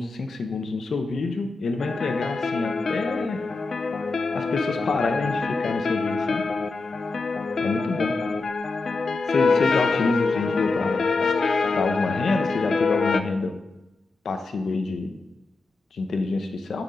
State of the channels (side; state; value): right; quieter; 3.7 dB